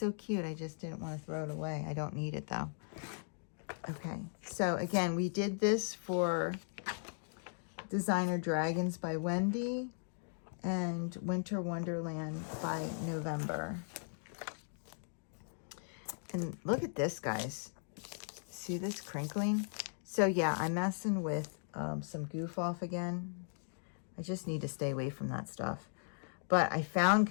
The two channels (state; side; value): silent; right; digital silence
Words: cute. I just didn't want to throw it away. I don't need it though. Okay, so again, we did this for Designer Dragons by Wendy and Winter Wonderland by November. And look at this, guys. See this crinkling? So yeah, I'm messing with some goof off again. I just need to stay away from that stuff. But I found